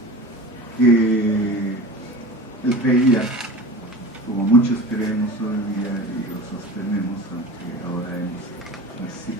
que él creía, como muchos creemos hoy día y lo sostenemos, aunque ahora hemos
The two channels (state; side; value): normal; both; correlation 0.34